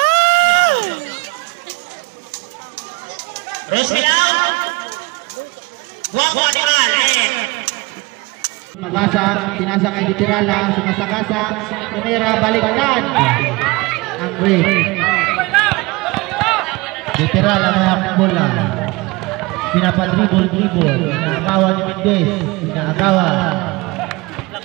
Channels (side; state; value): left; quieter; 23.8 dB